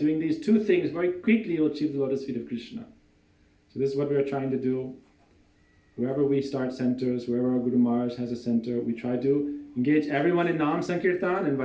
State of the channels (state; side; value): identical; both; correlation 1.00